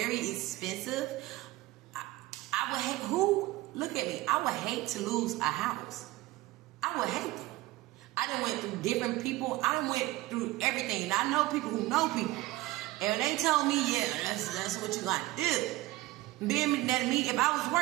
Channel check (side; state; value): left; quieter; 18.6 dB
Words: expensive, I would hate, look at me, I would hate to lose a house. I would hate it. I done went through different people. I done went through everything. And I know people who know people. And they told me, yeah, that's what you got to do. Being that me, if I was